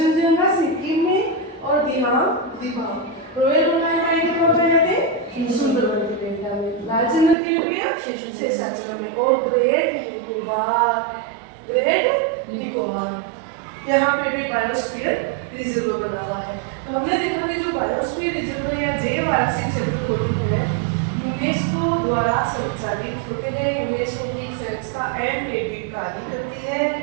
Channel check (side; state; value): left; drops out; at 7.4 s